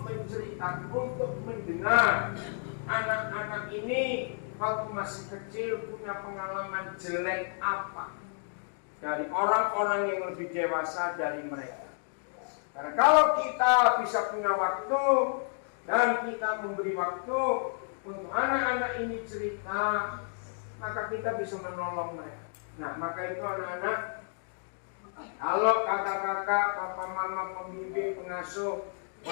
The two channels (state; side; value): silent; right; 57 dB below the other